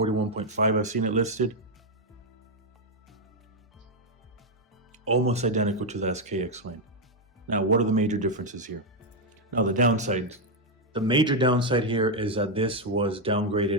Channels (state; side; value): normal; both; correlation 0.01